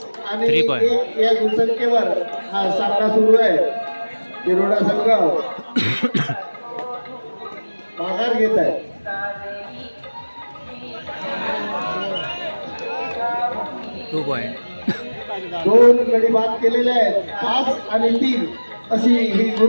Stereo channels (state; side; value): inverted; both; correlation -1.00